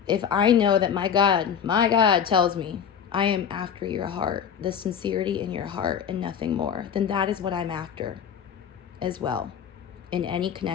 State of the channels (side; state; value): right; quieter; 7.9 dB